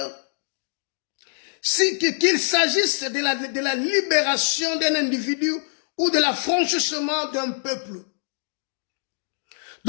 qu'il s'agisse de la libération d'un individu ou de l'affranchissement d'un peuple.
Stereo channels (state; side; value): silent; right; digital silence